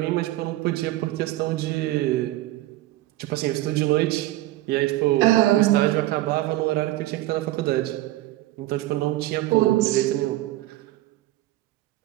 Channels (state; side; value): quieter; left; 16.5 dB